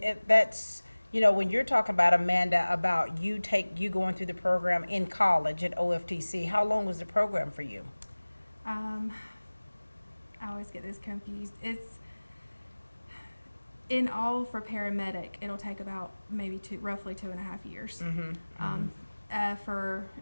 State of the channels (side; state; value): both; inverted; correlation -1.00